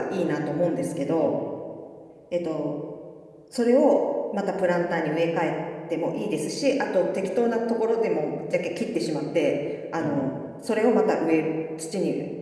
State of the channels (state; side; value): identical; both; correlation 1.00